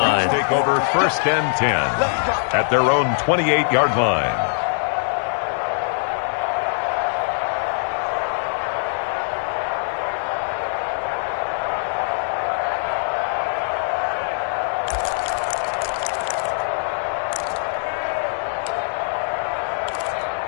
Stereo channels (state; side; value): silent; right; digital silence